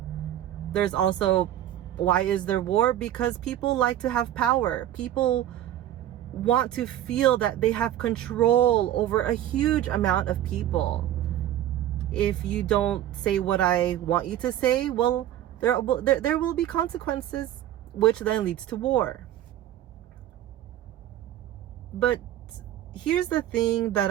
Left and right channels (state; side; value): quieter; left; 12.3 dB